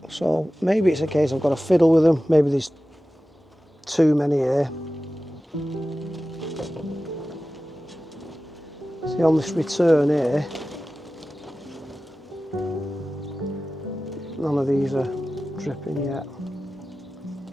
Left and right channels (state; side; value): normal; both; correlation 0.95